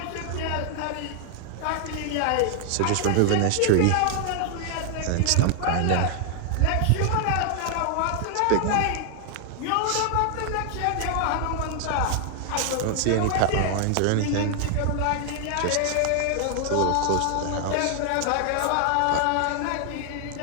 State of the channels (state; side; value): different; both; correlation 0.00